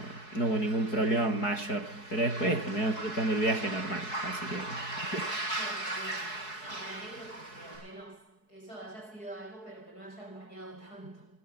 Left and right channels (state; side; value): late; right; 4.7 ms